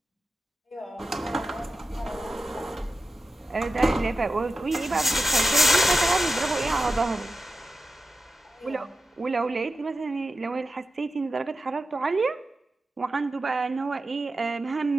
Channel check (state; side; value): normal; both; correlation 0.92